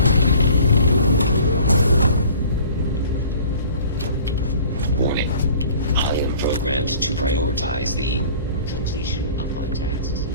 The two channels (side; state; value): both; inverted; correlation -0.47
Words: Warning. I am programmed to prioritize the completion of my tasks.